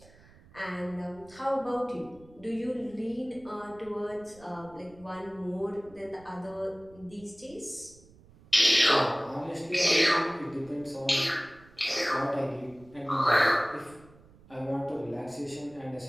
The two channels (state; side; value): noise; right; rumble, 24 dB below the sound